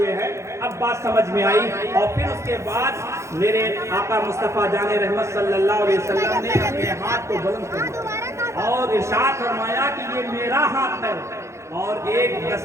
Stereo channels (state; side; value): late; left; 0.14 ms